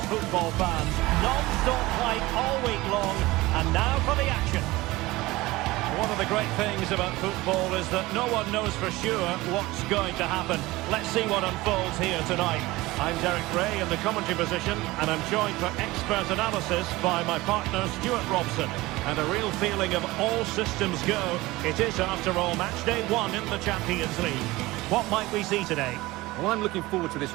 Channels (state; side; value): quieter; left; 19.8 dB